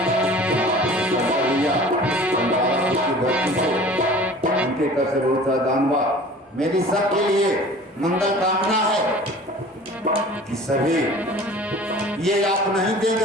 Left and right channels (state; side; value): normal; both; correlation 0.44